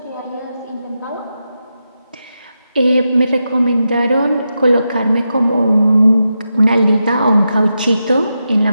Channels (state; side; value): inverted; both; correlation -0.88